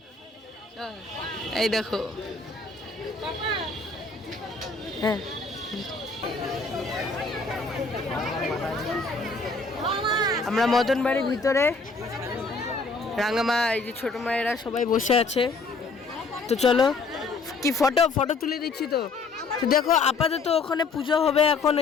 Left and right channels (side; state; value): right; quieter; 4.0 dB